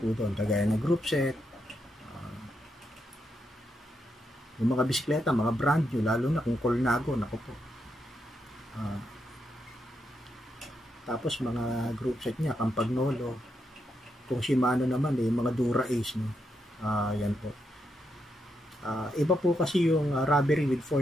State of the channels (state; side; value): normal; both; correlation 0.82